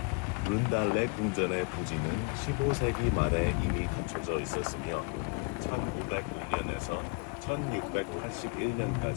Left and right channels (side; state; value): right; quieter; 30.2 dB